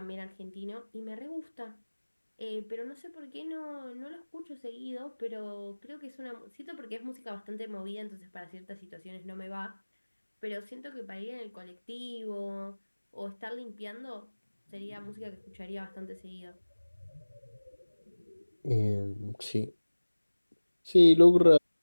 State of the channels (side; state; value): both; inverted; correlation -1.00